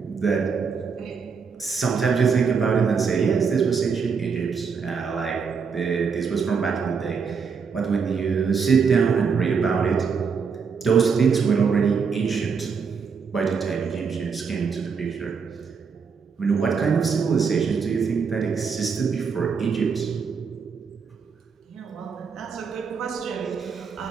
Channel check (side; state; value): left; quieter; 5.8 dB